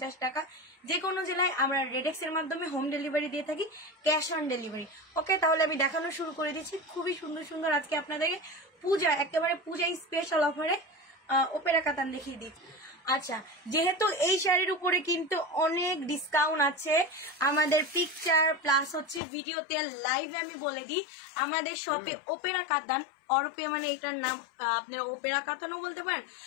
টাকা। যে কোনো জেলায় আমরা রেডেক্স এর মাধ্যমে হোম ডেলিভারি দিয়ে থাকি, ক্যাশ অন ডেলিভারি। ওকে, তাহলে আমি দেখানো শুরু করে দিচ্ছি। খুবই সুন্দর সুন্দর আজকে আপনাদেরকে পূজা, একেবারে পূজা স্পেশাল অফারে ওপেরা কাতান দেখিয়ে দিই। আচ্ছা, যেহেতু এই শাড়ির উপরে কিন্তু অনেক ডিসকাউন্ট আছে, আমাদের পিকচার প্লাস হচ্ছে ভিডিওতে লাইভে আমি বলে দিই, আমাদের শপে ওপেরা কাতান অরপে, মানে এটার নাম আপনারা ওপেরা কাতানও বলতে পারেন,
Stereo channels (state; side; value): drops out; right; at 19.2 s